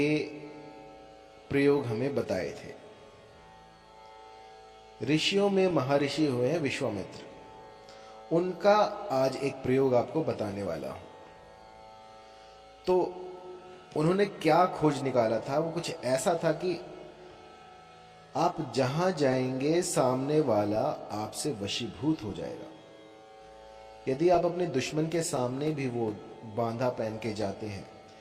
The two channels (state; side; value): identical; both; correlation 1.00